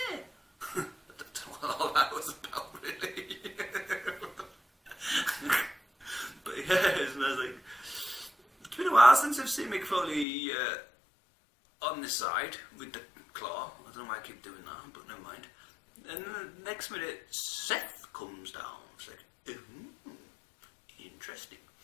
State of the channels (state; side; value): drops out; right; at 10.2 s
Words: don't know what all that was about, really. But yes, and I was like, it's been a while since I've seen Mick Foley on this side with the claw. I don't know why I keep doing that, but never mind. And then the next minute, Seth comes down. It's like, interesting.